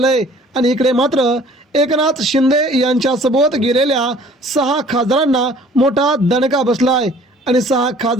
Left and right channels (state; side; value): normal; both; correlation 0.52